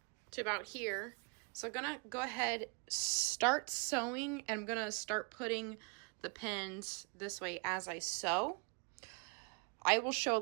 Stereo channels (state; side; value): quieter; left; 33.6 dB